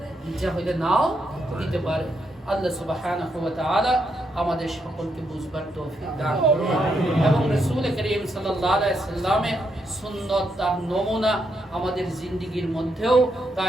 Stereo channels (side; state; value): both; normal; correlation 0.79